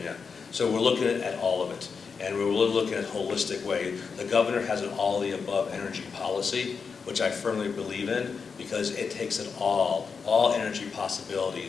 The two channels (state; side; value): quieter; right; 5.5 dB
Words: So we're looking at all of it, and we're really looking at a holistic way. The governor has an all-the-above energy policy, which I firmly believe in, because it takes it all energy